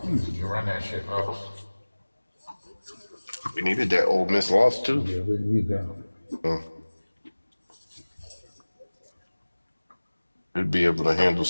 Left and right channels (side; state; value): both; inverted; correlation -1.00